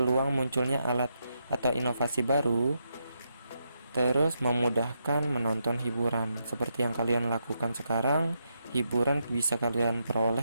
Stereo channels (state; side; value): inverted; both; correlation -0.82